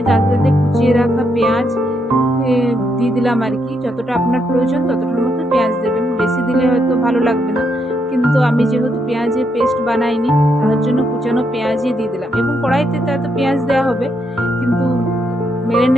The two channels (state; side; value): normal; both; correlation 0.78